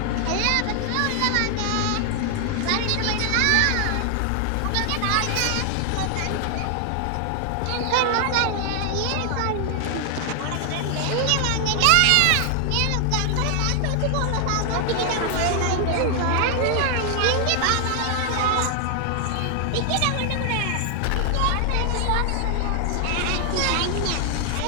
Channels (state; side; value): different; both; correlation 0.00